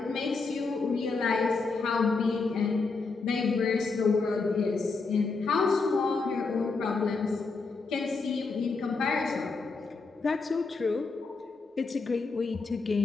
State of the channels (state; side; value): quieter; right; 4.2 dB